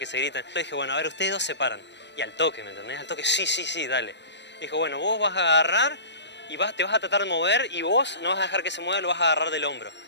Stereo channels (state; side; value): late; right; 0.51 ms